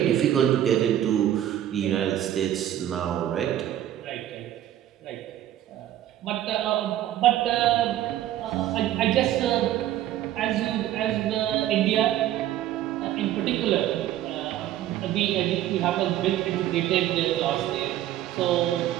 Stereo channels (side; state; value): left; quieter; 12.5 dB